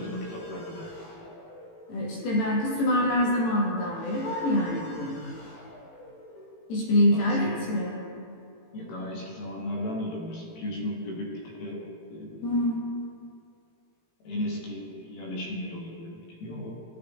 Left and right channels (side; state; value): right; late; 18 ms